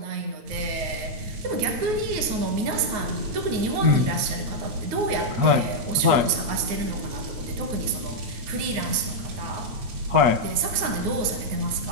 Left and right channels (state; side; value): late; left; 9.4 ms